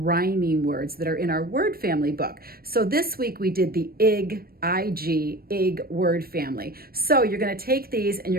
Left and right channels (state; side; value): late; left; 0.44 ms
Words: words that are in our word family book. So this week we did the ig word family. So you're going to take these and